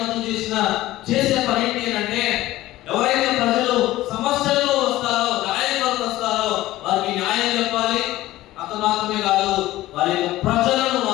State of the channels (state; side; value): quieter; right; 16.3 dB